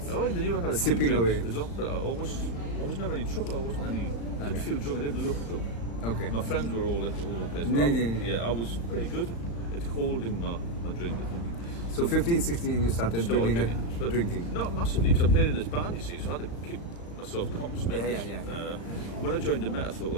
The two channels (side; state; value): right; late; 35 ms